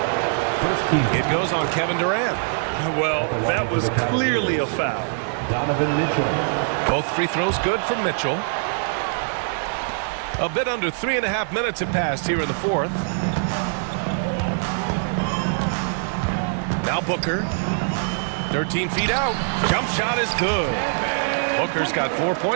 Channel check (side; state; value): left; silent; digital silence